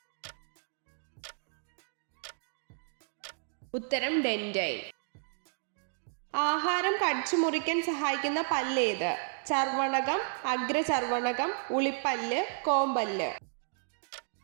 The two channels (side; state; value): left; silent; digital silence